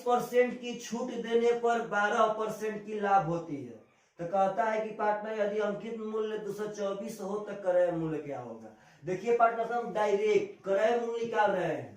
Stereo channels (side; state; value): both; identical; correlation 1.00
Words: की छूट देने पर 12% की लाभ होती है। तो कहता है कि पार्टनर यदि अंकित मूल्य 224 हो तो क्रय मूल्य क्या होगा। देखिए पार्टनर साहब डायरेक्ट क्रय मूल्य निकाल रहे